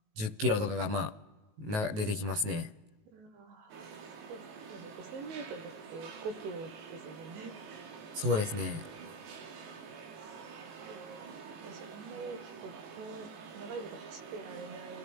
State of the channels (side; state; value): left; late; 19 ms